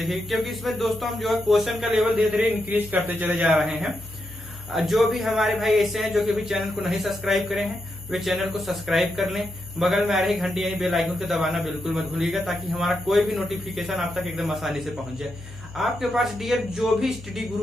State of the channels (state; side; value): noise; left; hum, 16 dB below the sound